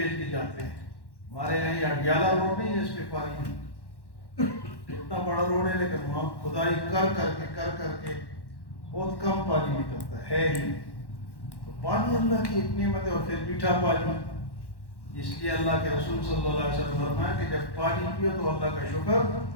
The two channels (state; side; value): late; right; 1.1 ms